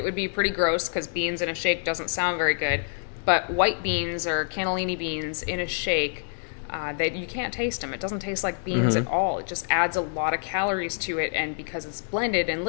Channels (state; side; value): silent; right; 60 dB below the other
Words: would be pretty gross because beans in a shake doesn't sound very good. But white beans or cannellini beans in a shake, that you can't taste them. It doesn't taste like beans at all. It just adds a lot of calories to it, and because it's blended and